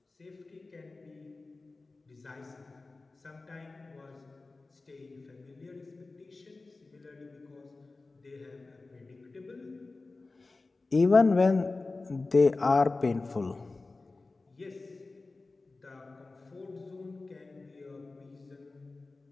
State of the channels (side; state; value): right; quieter; 3.5 dB